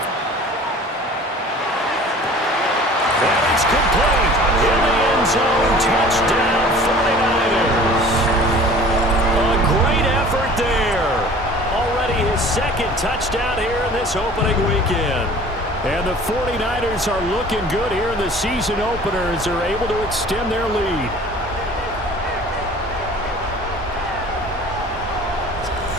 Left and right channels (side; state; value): both; normal; correlation 0.46